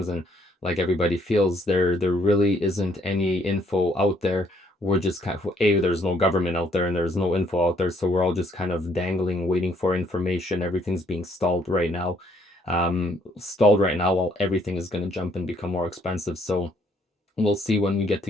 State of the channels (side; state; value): both; normal; correlation 0.67